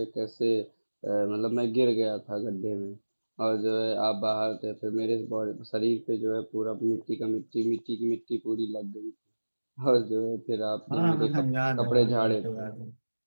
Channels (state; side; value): inverted; both; correlation -1.00